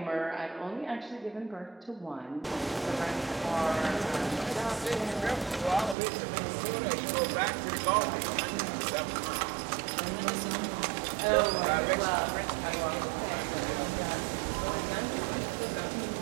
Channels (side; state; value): left; drops out; at 6.0 s